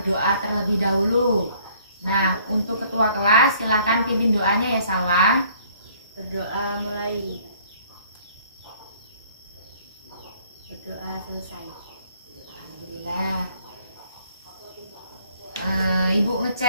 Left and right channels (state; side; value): inverted; both; correlation -0.59